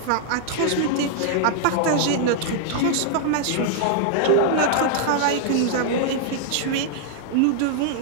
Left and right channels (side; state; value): both; different; correlation -0.01